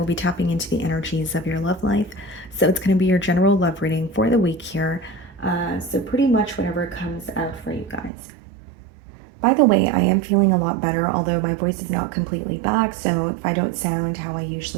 be tapping into the energies of your love life. So it's going to be your general love reading for the week here. So pretty much whatever comes out for you guys. By the way, I am feeling a lot better, although my voice is not completely back. So if I don't sound how I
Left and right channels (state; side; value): drops out; left; at 8.1 s